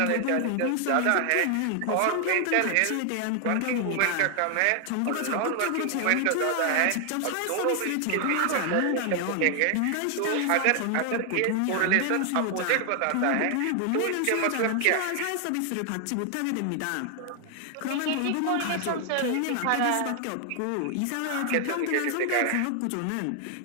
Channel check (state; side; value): different; both; correlation 0.00